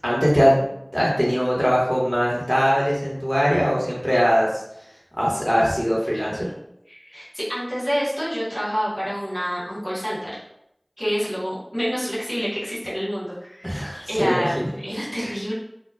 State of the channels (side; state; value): both; identical; correlation 1.00